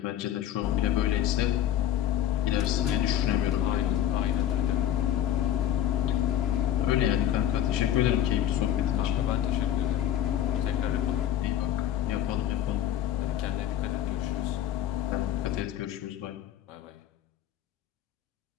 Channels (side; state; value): right; quieter; 11.2 dB